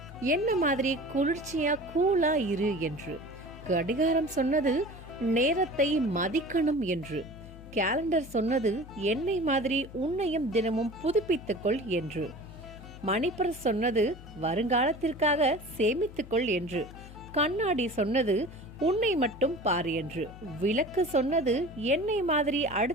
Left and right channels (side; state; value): left; noise; hum, 17 dB below the sound